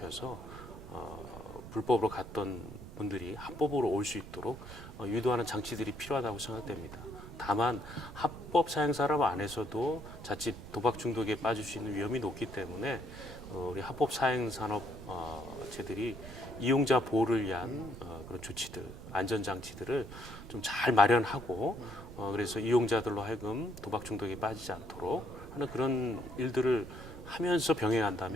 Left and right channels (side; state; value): right; noise; rumble, 13 dB below the sound